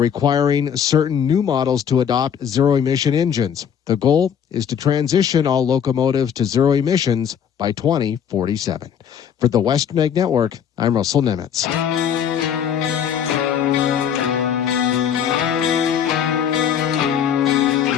certain new models to adopt zero-emission engines. The goal is to transition all locomotives to zero emissions by 2047. For the Western Egg Network, I'm Russell Nemitz.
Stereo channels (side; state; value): right; quieter; 8.2 dB